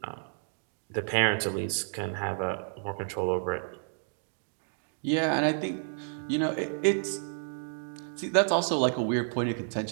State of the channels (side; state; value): left; silent; digital silence